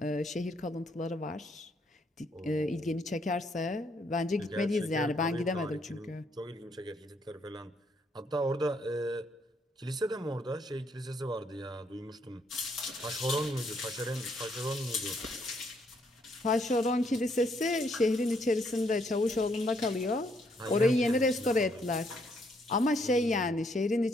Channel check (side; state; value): both; normal; correlation 0.71